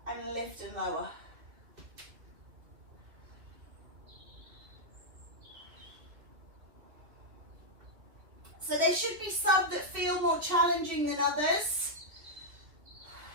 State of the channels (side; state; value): left; late; 2.6 ms